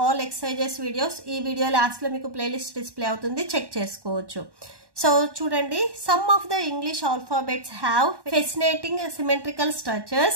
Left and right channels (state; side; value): late; left; 1.1 ms